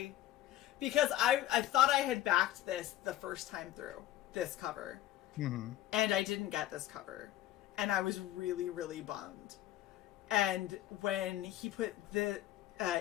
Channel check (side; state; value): right; quieter; 13.7 dB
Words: because I thought I had backed this the first time through, this cover. Mm-hmm. And I didn't get this cover. And I was really, really bummed. And when he put the